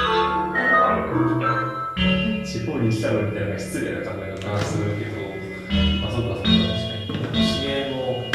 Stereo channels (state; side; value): identical; both; correlation 1.00